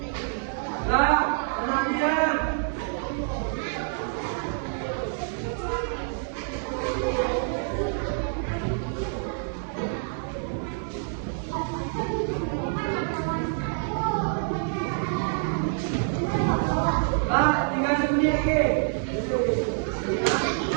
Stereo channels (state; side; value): silent; left; 60 dB below the other